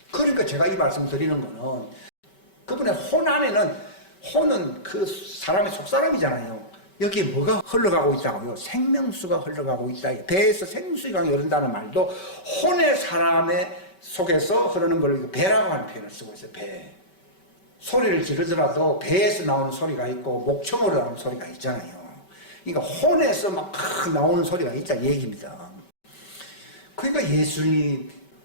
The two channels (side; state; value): right; late; 5.2 ms